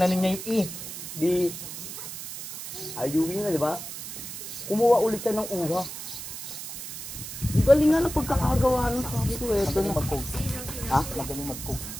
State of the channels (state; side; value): noise; right; hiss, 9 dB below the sound